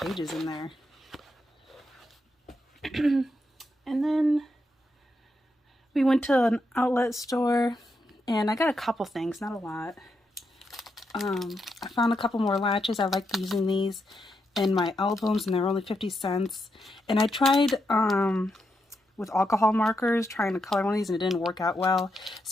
in there. And then we went to an outlet store and I got a couple things, not a lot. I found a couple more latches. I like using these in my albums and they're only 50 cents. And I tried with alcohol markers trying to color one of these and it didn't work out well.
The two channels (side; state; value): both; normal; correlation 0.83